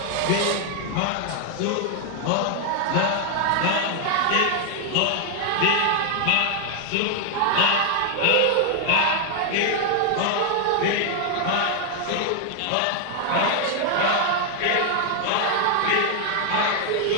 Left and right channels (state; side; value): different; both; correlation 0.00